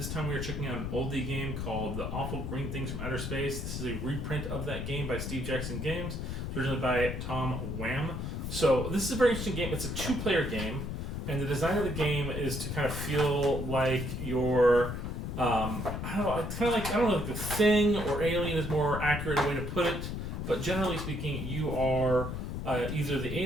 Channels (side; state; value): left; noise; rumble, 4 dB below the sound